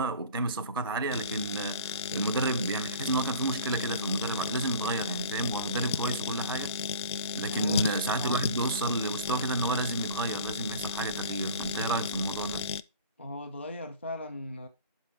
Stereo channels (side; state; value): both; inverted; correlation -0.41